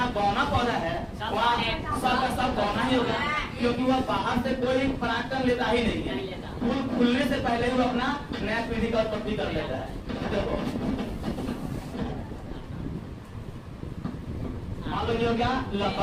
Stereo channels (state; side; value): identical; both; correlation 1.00